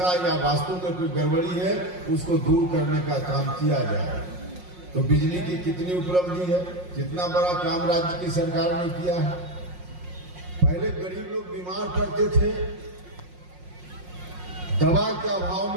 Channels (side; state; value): left; late; 5.5 ms